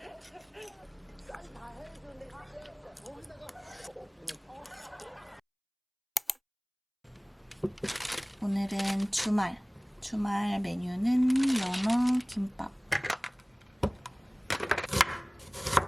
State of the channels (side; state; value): both; identical; correlation 1.00